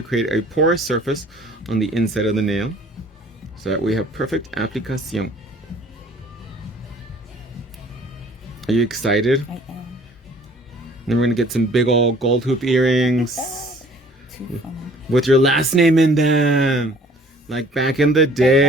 create a porous surface on the inside of the nail so that we have perfect application. Are you excited? I am. Then we're going to get some big old gold hoop earrings Too funny. with your last name in them. Like back in the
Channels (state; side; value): normal; both; correlation 0.54